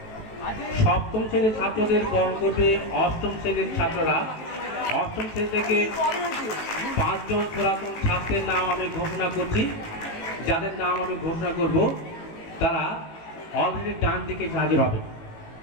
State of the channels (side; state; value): right; late; 18 ms